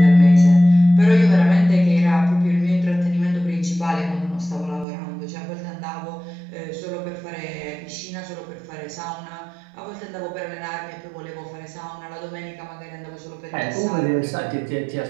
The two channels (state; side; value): drops out; left; at 4.9 s